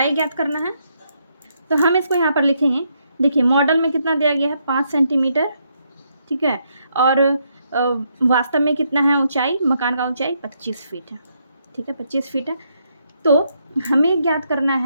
ज्ञात करना है तो हम इसको यहाँ पर लिखेंगे। देखिए मॉडल में कितना दिया गया है, 5 सेंटीमीटर, ठीक है। और वास्तव में कितना है ऊंचाई, मकान का ऊंचाई 25 फीट है, ठीक है, 25 फीट है। तो हमें ज्ञात करना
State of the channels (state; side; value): inverted; both; correlation -0.76